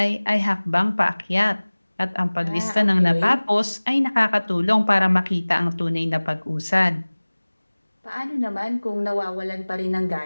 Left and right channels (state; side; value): inverted; both; correlation -1.00